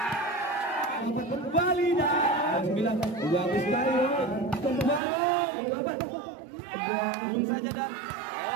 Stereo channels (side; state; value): left; drops out; at 5.0 s